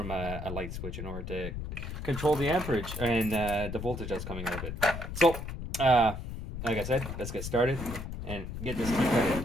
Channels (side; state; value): left; noise; rumble, 7 dB below the sound